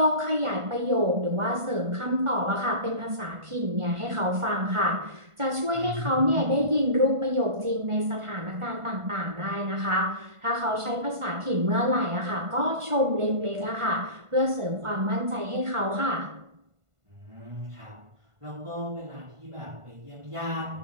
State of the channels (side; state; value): left; late; 1.5 ms